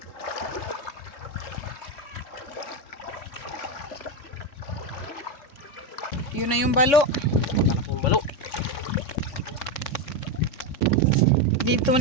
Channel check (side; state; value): right; late; 3.6 ms